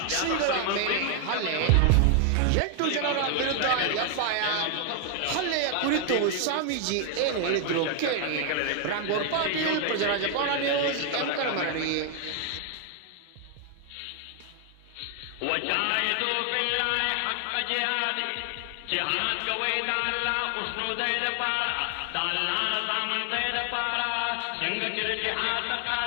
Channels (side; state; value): both; different; correlation 0.00